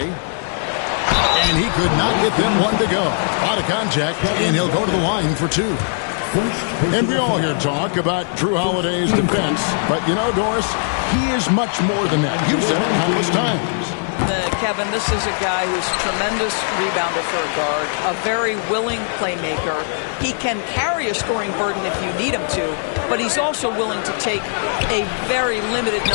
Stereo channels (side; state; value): right; silent; 62 dB below the other